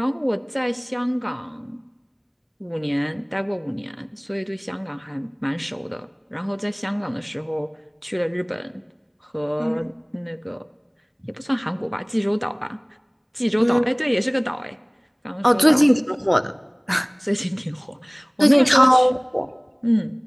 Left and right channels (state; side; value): identical; both; correlation 1.00